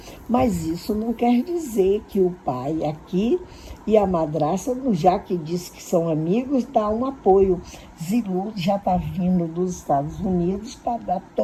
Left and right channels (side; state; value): both; identical; correlation 1.00